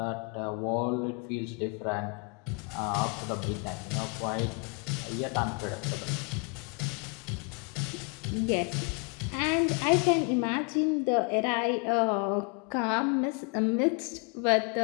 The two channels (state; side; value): quieter; right; 33.9 dB